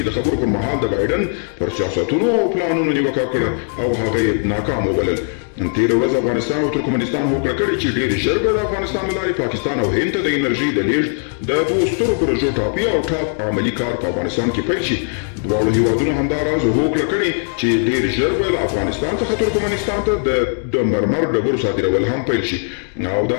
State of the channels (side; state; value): right; silent; 58 dB below the other